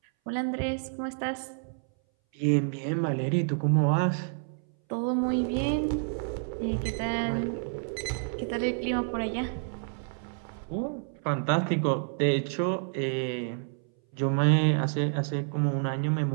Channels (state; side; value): silent; left; 59 dB below the other